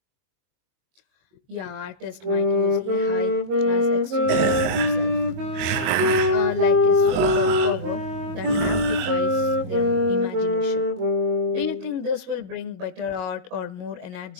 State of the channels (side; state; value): left; late; 23 ms